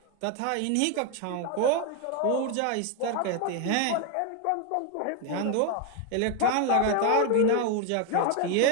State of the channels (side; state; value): both; different; correlation 0.01